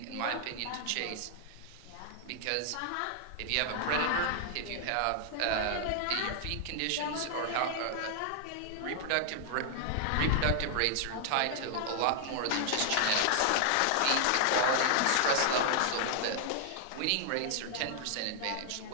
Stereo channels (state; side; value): different; both; correlation 0.00